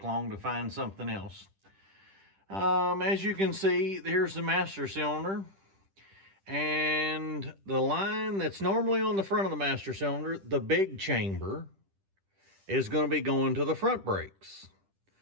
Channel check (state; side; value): late; left; 10 ms